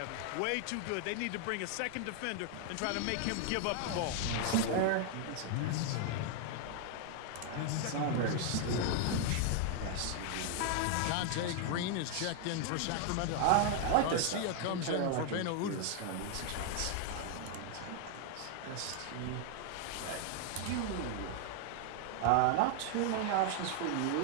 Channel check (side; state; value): both; different; correlation 0.00